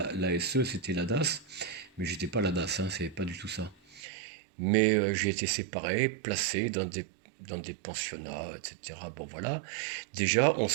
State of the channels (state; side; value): drops out; left; at 4.0 s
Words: c'était la DAS. Mais j'étais pas à la DAS, hein, c'est pas du tout ça. Mais j'ai été séparé, placé dans des pensionnats, etc. Bon, voilà. Déjà, on